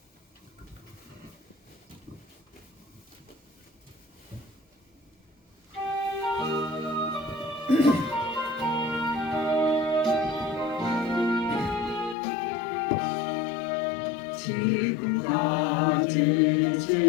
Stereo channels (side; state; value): right; drops out; at 12.2 s